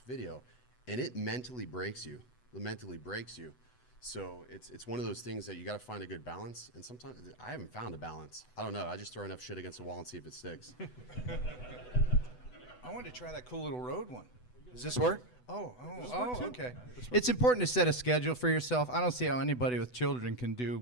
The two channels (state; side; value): late; right; 8.0 ms